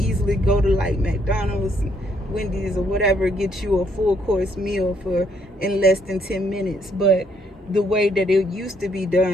go to like McDonald's, Wendy's, or whatever, get you a full course meal in less than 10 minutes. But the way that it used to be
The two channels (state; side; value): normal; both; correlation 0.70